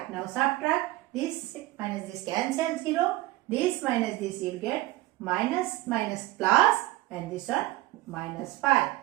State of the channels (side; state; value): left; quieter; 18.1 dB